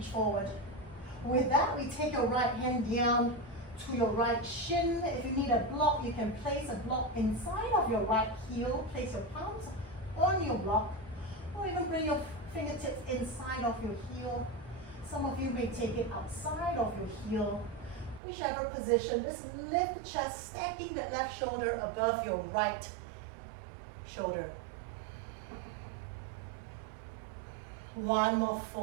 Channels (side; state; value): left; drops out; at 18.2 s